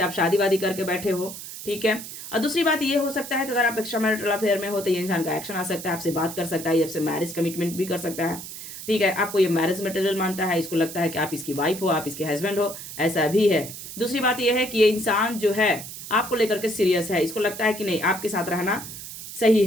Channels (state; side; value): noise; right; hiss, 11 dB below the sound